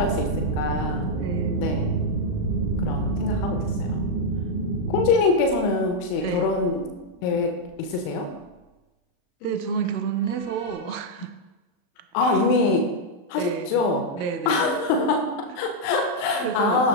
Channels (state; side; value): late; right; 39 ms